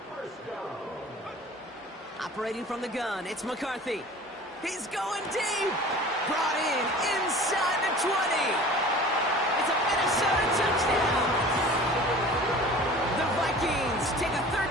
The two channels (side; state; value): both; normal; correlation 0.42